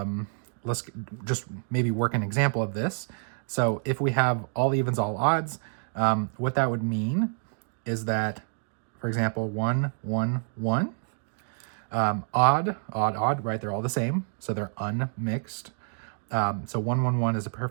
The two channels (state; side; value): silent; left; digital silence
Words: let's just maybe work an example of this. So if we have all evens, all odds, what that would mean is that, for example, 1, 1, 1, odd, odd, odd, right? They're all the same, so they're unmixed. So 1, 1, 1 is a